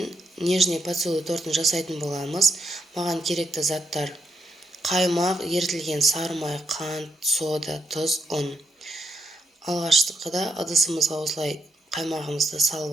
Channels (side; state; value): both; normal; correlation 0.79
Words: нежный поцелуй тортын жасайтын боламыз. Маған керекті заттар: қаймақ, ерітілген сары май, қант, сода, тұз, ұн. Алғашқыда ыдысымызға осылай қаймағымызды